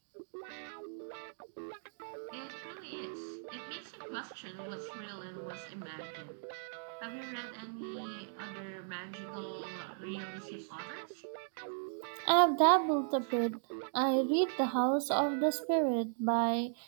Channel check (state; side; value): silent; left; digital silence